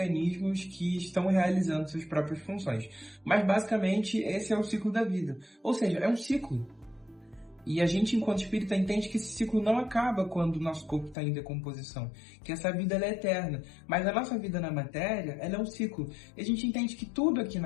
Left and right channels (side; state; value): right; drops out; at 11.2 s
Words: que estão realizando suas próprias funções. Mas basicamente esse é o ciclo da vida. Ou seja, é um ciclo. E a gente, enquanto espírita, entende que esse ciclo não acaba quando o nosso corpo está em decomposição, que essa vida ela é eterna. Mas a nossa vida na matéria, ela é um ciclo. E a gente entende que tudo aqui